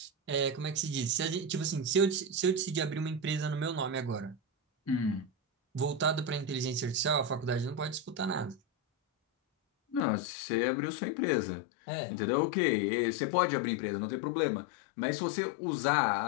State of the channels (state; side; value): drops out; right; at 10.0 s